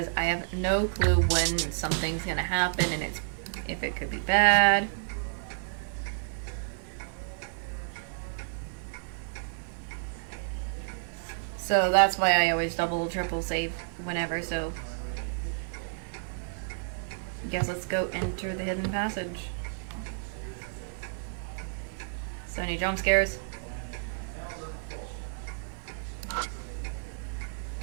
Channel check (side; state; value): left; silent; 57 dB below the other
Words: I have no clue when something's gonna happen and if it could be bad. So that's why I always double, triple save whenever, so... Guess let's go enter the hidden passage. So any jump scares?